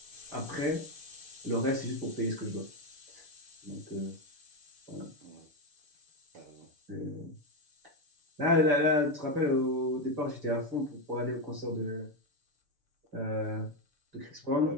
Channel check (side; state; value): left; late; 6.8 ms